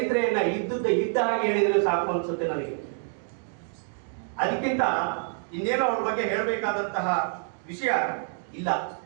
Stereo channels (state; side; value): silent; left; 59 dB below the other